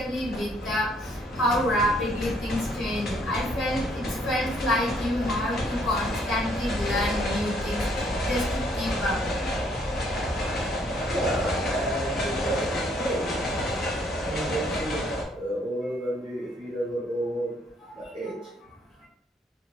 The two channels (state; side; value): normal; both; correlation 0.66